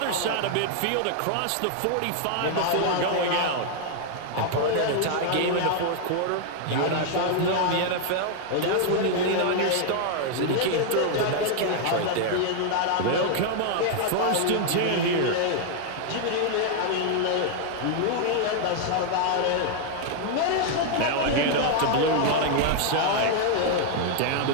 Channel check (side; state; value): both; different; correlation 0.00